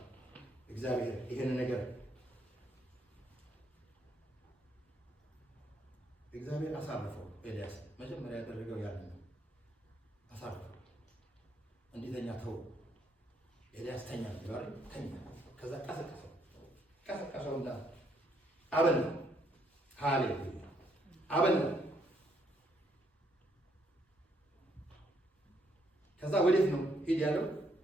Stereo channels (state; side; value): normal; both; correlation 0.72